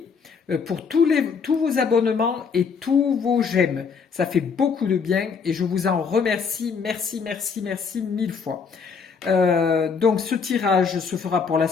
pour tous vos abonnements et tous vos j'aime. Ça fait beaucoup de bien et je vous en remercie. Merci, merci, merci 1000 fois. Donc ce tirage se fera pour la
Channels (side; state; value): right; quieter; 5.7 dB